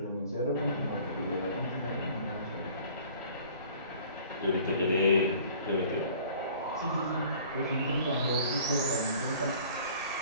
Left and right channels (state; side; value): inverted; both; correlation -0.50